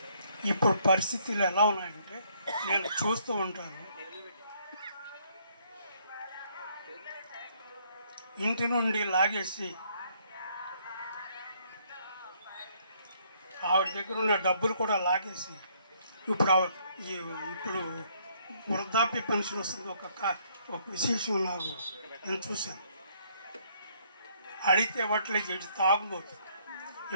ఇప్పుడు పరిస్థితులు ఎలా ఉన్నాయంటే నేను చూస్తూ ఉంటాను. ఇంటి నుండి లాగేసి ఆవిడ దగ్గర ఉన్న డబ్బులు కూడా లాగేసి ఇప్పుడు వృద్ధాప్య పెన్షన్ వస్తుంది. ఒక విశేషం నాకు నేను చూశాను. అడిగితే ఇవ్వట్లేదు, ఇటు తాగుబోతు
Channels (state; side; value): inverted; both; correlation -0.67